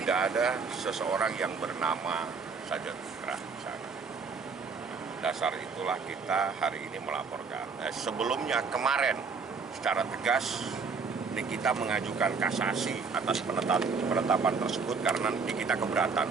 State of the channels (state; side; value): quieter; left; 5.1 dB